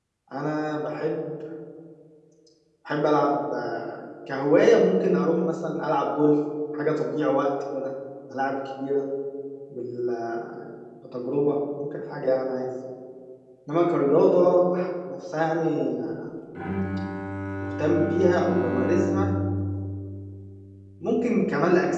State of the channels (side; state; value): both; identical; correlation 1.00